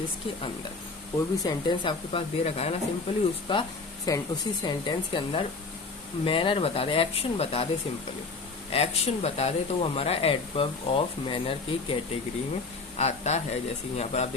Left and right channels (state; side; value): quieter; right; 4.0 dB